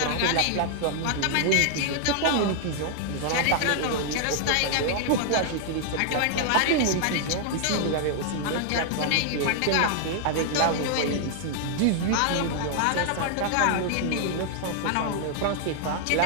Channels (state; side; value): different; both; correlation 0.00